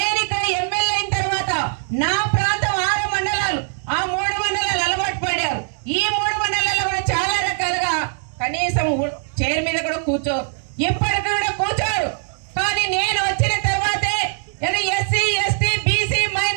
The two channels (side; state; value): left; silent; digital silence